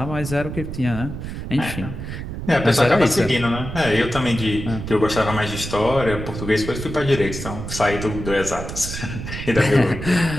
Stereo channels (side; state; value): right; noise; rumble, 7 dB below the sound